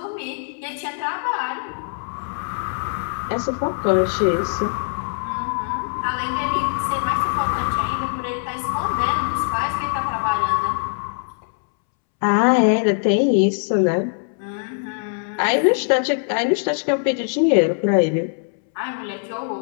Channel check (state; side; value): silent; right; 64 dB below the other